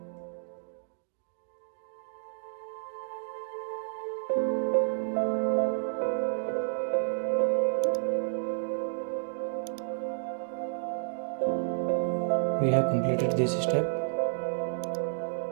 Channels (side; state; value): left; silent; digital silence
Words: We have completed this step